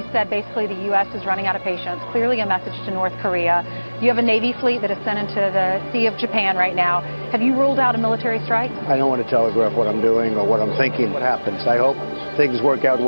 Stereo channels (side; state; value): both; inverted; correlation -1.00